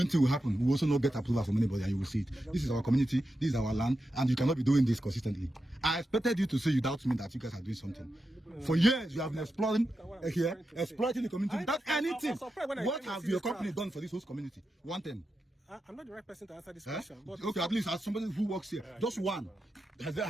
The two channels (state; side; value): normal; both; correlation 0.89